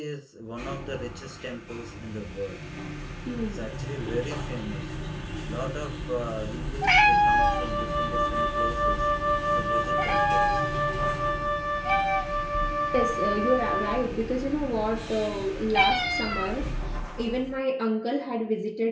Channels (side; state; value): both; identical; correlation 1.00